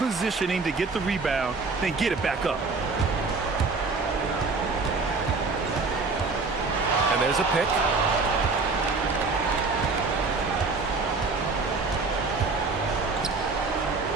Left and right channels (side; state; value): left; quieter; 4.0 dB